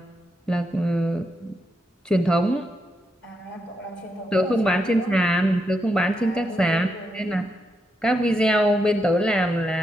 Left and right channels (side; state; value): both; normal; correlation 0.83